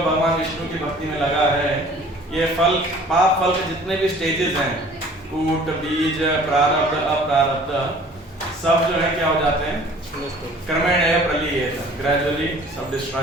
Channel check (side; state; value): both; normal; correlation 0.50